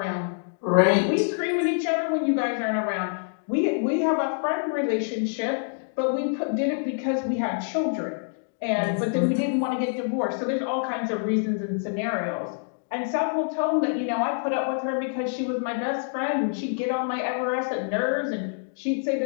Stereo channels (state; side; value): silent; right; digital silence